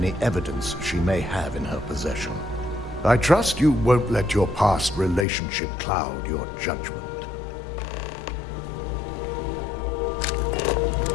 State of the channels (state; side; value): drops out; right; at 5.2 s